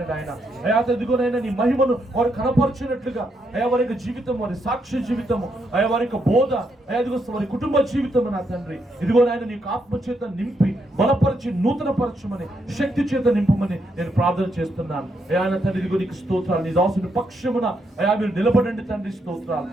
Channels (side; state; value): both; normal; correlation 0.78